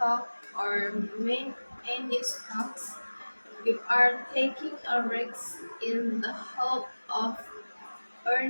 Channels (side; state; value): both; inverted; correlation -1.00